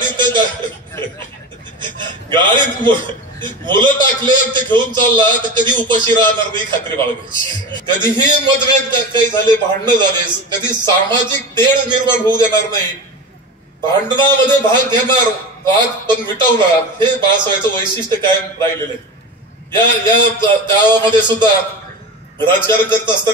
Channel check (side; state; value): both; normal; correlation 0.28